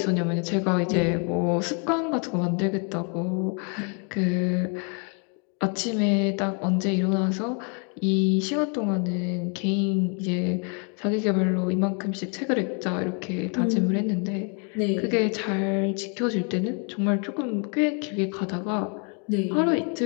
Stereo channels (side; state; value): right; quieter; 38.0 dB